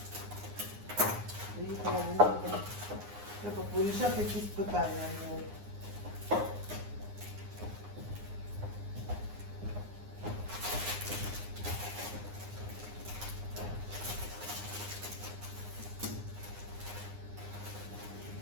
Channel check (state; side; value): late; left; 9.7 ms